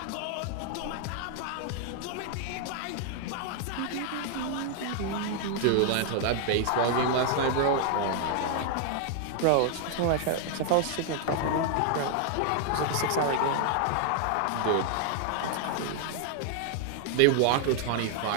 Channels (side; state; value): both; different; correlation 0.00